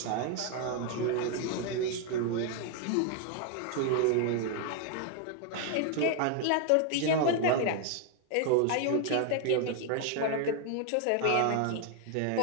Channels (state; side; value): different; both; correlation 0.00